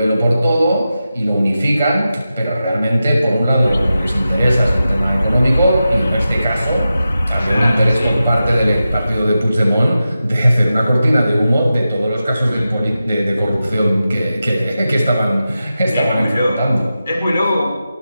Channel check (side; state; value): both; inverted; correlation -0.92